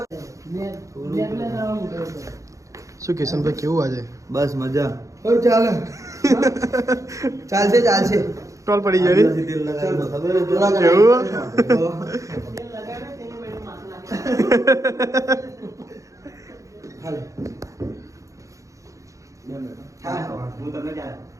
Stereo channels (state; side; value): late; left; 0.15 ms